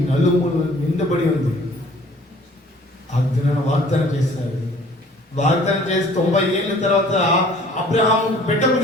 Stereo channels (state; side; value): normal; both; correlation 0.53